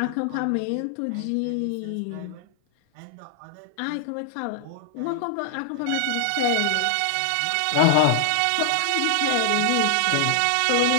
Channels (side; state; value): both; different; correlation -0.01